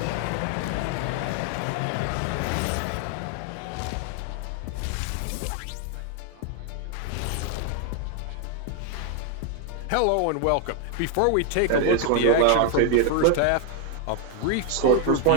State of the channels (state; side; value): different; both; correlation 0.00